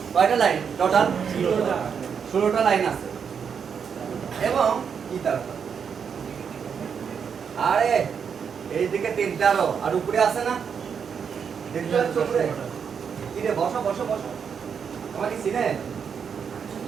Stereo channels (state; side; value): quieter; left; 6.9 dB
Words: কয়টা লাইন টোটাল? 16টা লাইন আছে। এবং কি তারপর, আরে এইদিকে 3টা আর উপরে আছে না, দেখতে পাচ্ছ উপরে? কি রে, বসো বসো বসো, আমাকে চিনে?